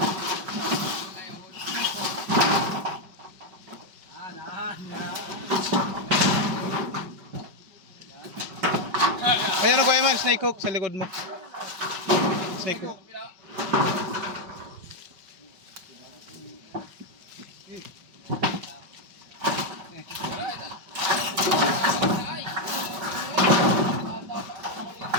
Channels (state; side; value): late; left; 5.2 ms